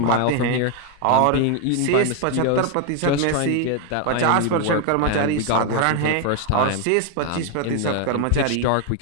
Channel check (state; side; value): different; both; correlation 0.00